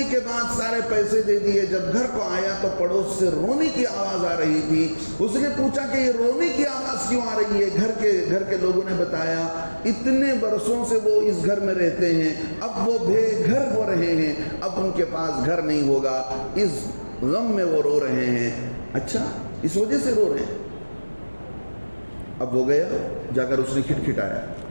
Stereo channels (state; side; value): inverted; both; correlation -1.00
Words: کے بعد سارے پیسے دے دیے. جب گھر کو آیا تو پڑوس سے رونے کی آواز آ رہی تھی. اس نے پوچھا کہ یہ رونے کی آواز کیوں آ رہی ہے؟ گھر کے لوگوں نے بتایا اتنے برسوں سے وہ اس گھر میں رہتے ہیں, اب وہ بے گھر ہو رہے ہیں, اب ان کے پاس گھر نہیں ہوگا, اس غم میں وہ رو رہے ہیں. اچھا, اس وجہ سے رو رہے ہیں. اب وہ گیا, جا کر اس نے کھٹکھٹایا.